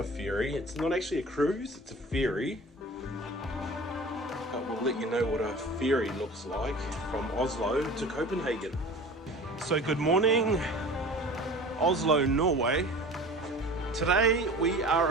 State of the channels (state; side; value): normal; both; correlation 0.40